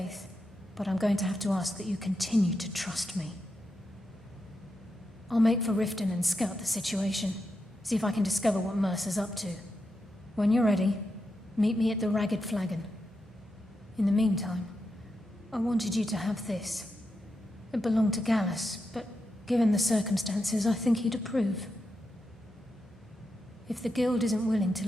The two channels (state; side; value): normal; both; correlation 0.86